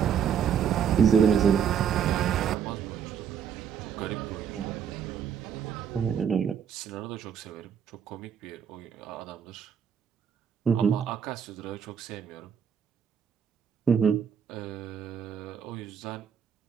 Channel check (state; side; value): quieter; left; 7.9 dB